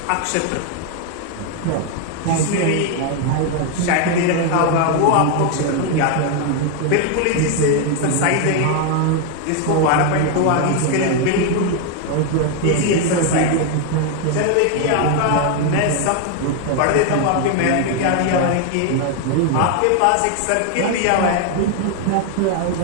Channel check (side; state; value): both; different; correlation 0.01